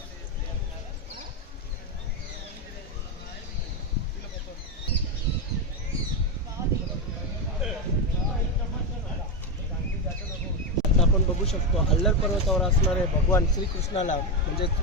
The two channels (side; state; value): both; normal; correlation 0.10